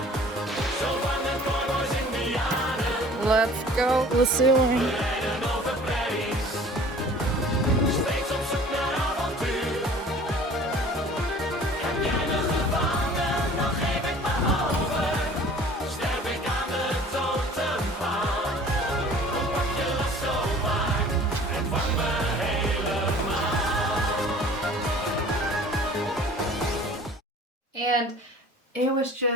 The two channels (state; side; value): normal; both; correlation 0.48